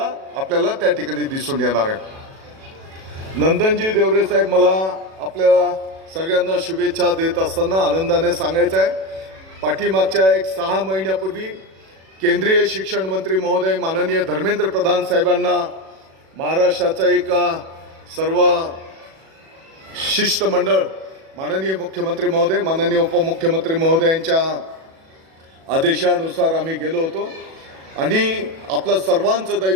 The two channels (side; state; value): left; late; 37 ms